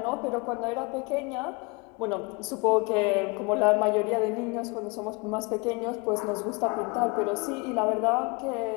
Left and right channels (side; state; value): right; quieter; 28.4 dB